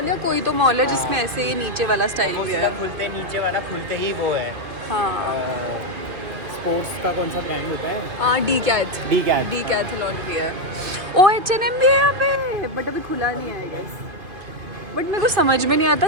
या कोई तो मॉल है जिसमें ऐसे ही नीचे वाला स्टाइल भी है। खुलते नीचे वाला खुलते ही वो है। हाँ, स्पोर्ट्स का कौन सा ब्रांड होता है? डी कैथ डीकैथलॉन भी है। ओ H&M भी है यहाँ पे, बट अभी खुला नहीं है आई गेस। बट मेरे को समझ में नहीं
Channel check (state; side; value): late; left; 2.5 ms